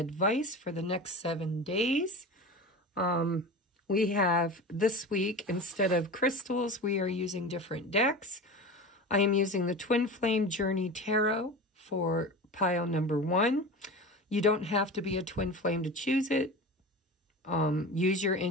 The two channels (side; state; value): both; normal; correlation 0.30